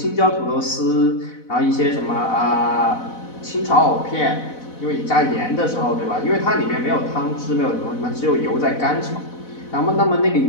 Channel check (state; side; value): late; right; 4.0 ms